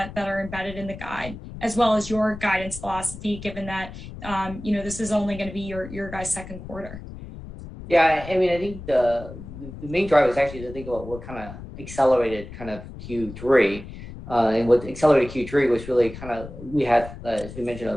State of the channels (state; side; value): noise; left; rumble, 13 dB below the sound